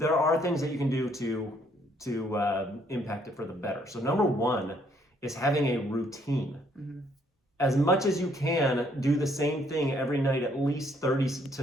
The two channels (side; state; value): both; normal; correlation 0.67